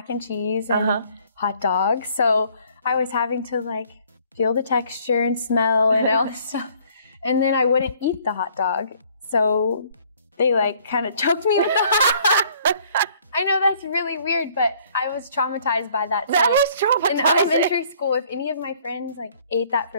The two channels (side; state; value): both; inverted; correlation -0.60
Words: and cheese and hot dogs. So I was having to like feel the texture and smell and all this stuff. And then I wouldn't eat the hot dog. So they like kind of choked me with the hot dog. I know that's really weird, but I was traumatized by that. That was traumatizing. In elementary school, if any of my friends like ate that